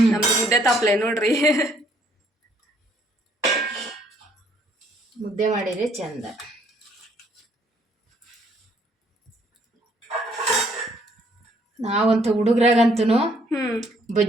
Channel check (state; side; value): normal; both; correlation 0.66